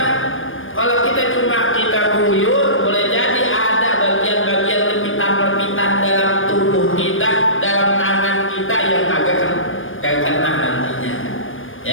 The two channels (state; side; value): late; right; 0.59 ms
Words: Kalau kita cuma guyur, boleh jadi ada bagian-bagian lepitan-lepitan dalam tubuh kita, dalam tangan kita yang kagak kena nantinya.